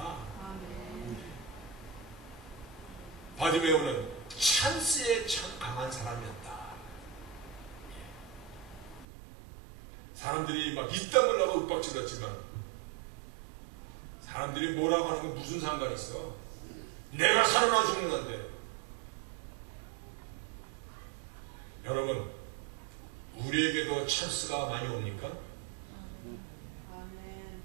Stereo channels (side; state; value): left; drops out; at 9.1 s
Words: 바디메오는 찬스에 참 강한 사람이었다. 사람들이 막 이땀을 나고 윽박질렀지만 사람들이 뭐라고 하는 건 무슨 상관이 있어? 내가 살아나 죽는 건데. 여러분 우리에게도 찬스가 많이 옵니까?